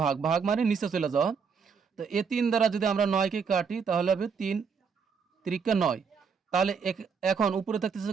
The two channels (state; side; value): quieter; left; 6.0 dB